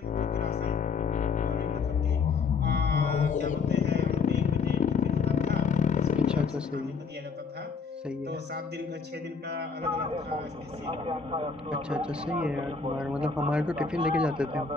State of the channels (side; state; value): right; quieter; 5.3 dB